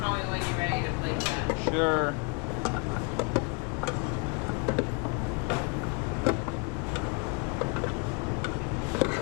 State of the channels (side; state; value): right; quieter; 32.6 dB